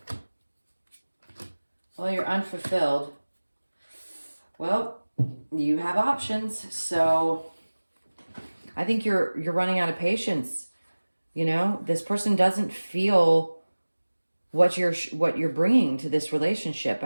Well, you're unfulfilled. Well, you have options. So I think you're running out of patience. You know, this person doesn't feel what you're bringing to this relationship.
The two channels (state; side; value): inverted; both; correlation -1.00